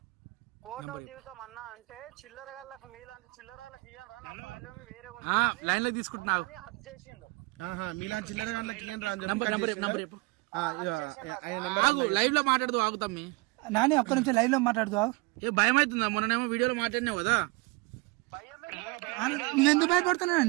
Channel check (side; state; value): left; quieter; 25.3 dB